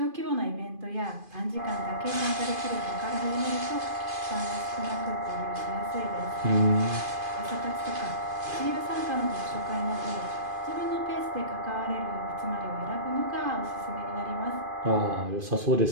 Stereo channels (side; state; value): left; late; 2.5 ms